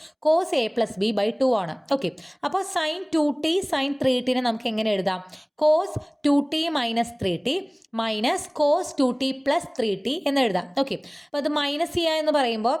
cos a plus b by 2 ആണ്. ഓക്കെ, അപ്പോൾ സൈൻ 2t സൈൻ 3t നമുക്ക് എങ്ങനെ എഴുതാം? Cos 2t minus 3t minus cos 2t plus 3t എന്ന് എഴുതാം. ഓക്കെ, അപ്പോൾ അത് മൈനസ് ചെയ്യുക എന്ന് പറയുമ്പോൾ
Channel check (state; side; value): identical; both; correlation 1.00